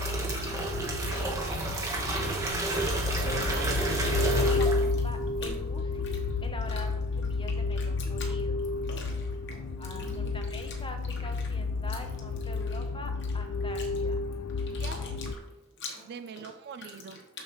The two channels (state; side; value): normal; both; correlation 0.46